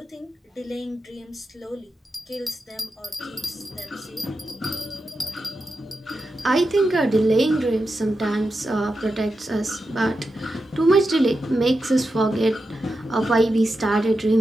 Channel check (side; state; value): both; normal; correlation 0.89